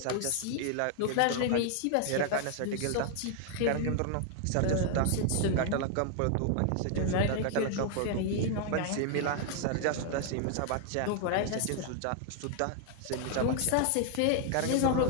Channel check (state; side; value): different; both; correlation 0.00